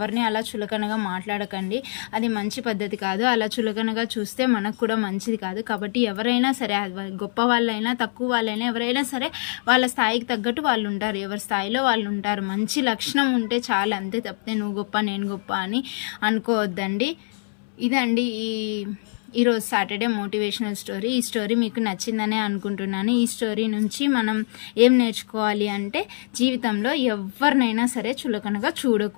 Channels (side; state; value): right; silent; 63 dB below the other